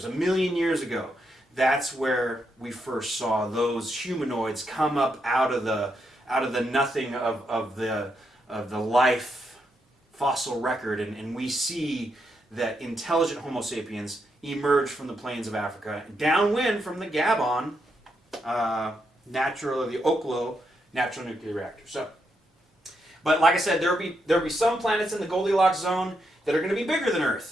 1 million years ago. That's where we first saw those humanoids come up out of the nothing of the life fossil record, and we see that intelligent Homo sapiens emerged from the plains of Africa, downwind from the Gabon the Oklo natural nuclear reactor. So, but like I said, there'll be some planets in the Goldilocks zone that are going to be bigger than Earth,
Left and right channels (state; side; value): normal; both; correlation 0.81